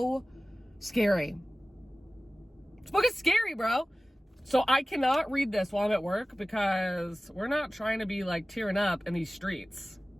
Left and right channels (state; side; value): normal; both; correlation 0.97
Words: scary. This book is scary, bro. So I cannot read this while I'm at work, because we're not trying to be like tearing up in these streets.